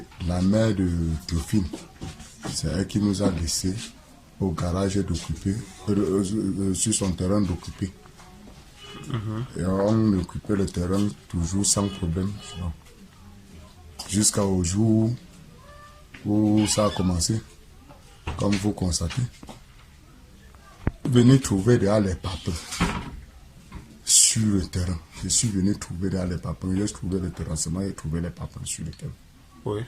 la mère de Théophile, c'est elle qui nous a laissé au garage d'occuper, sur son terrain d'occuper. Et on occupait le terrain toujours sans problème. Jusqu'au jour où ça a commencé, comme vous constatez. Venir trouver derrière les papins sur le terrain. Je suis venu trouver derrière les papins. J'ai trouvé le terrassement et trouvé les papins sur le terrain. Oui.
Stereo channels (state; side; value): identical; both; correlation 1.00